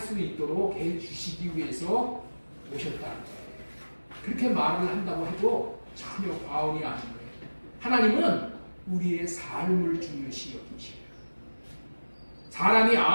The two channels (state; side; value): inverted; both; correlation -1.00